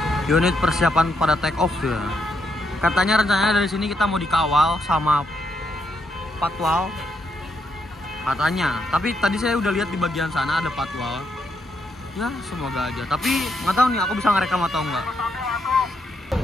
Unit persiapan pada take off ya. Katanya rencananya dari sini kita mau dikawal sama patwal. Katanya. Tapi tadi saya udah lihat di bagian sana ada patwal. Ya semoga aja. Tapi nggak tahu nih aku bisa ngerekam atau enggak.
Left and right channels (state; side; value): normal; both; correlation 0.78